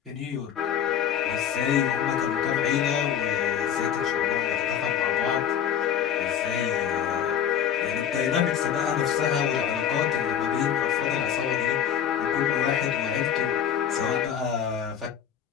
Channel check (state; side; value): quieter; right; 9.0 dB